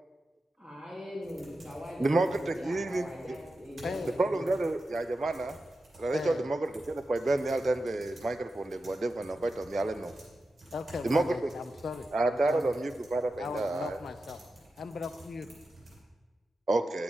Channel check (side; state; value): both; normal; correlation 0.91